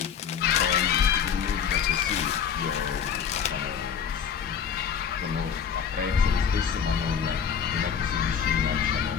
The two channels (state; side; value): quieter; right; 7.7 dB